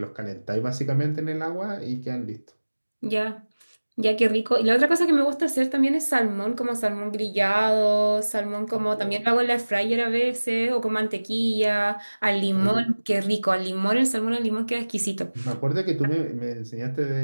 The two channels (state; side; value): inverted; both; correlation -1.00